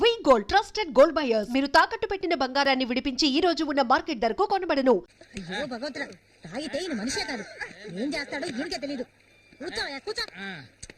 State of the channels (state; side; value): identical; both; correlation 1.00